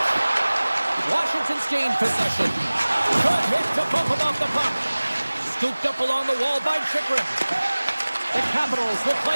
Washington's gained possession. Good hit to bump him off the puck. Scooped up along the wall by Chikrin. The Capitals will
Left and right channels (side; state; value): both; inverted; correlation -1.00